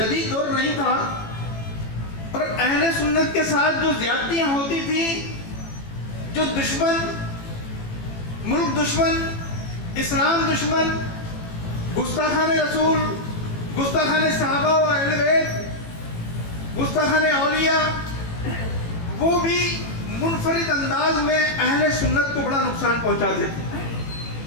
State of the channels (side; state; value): right; late; 18 ms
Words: دور نہیں تھا. اور اہل سنت کے ساتھ جو زیادتیاں ہوتی تھیں, جو دشمن, ملک دشمن, اسلام دشمن, گستاخان رسول, گستاخان صحابہ و اہل بیت, گستاخان اولیاء, وہ بھی منفرد انداز میں اہل سنت کو بڑا نقصان پہنچاتے تھے.